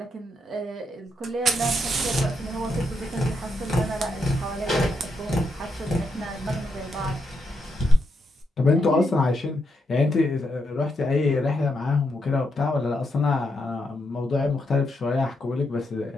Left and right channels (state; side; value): normal; both; correlation 0.81